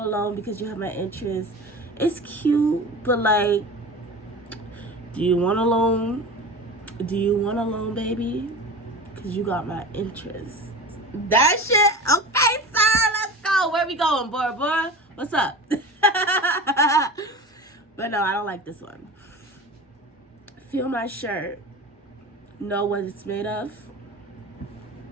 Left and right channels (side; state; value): both; normal; correlation 0.33